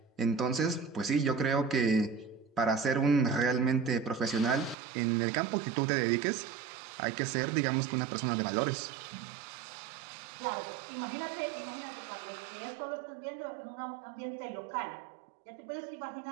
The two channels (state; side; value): drops out; left; at 4.8 s